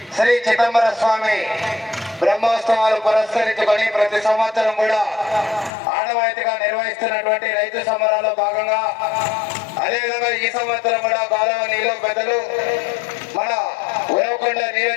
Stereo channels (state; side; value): drops out; right; at 5.7 s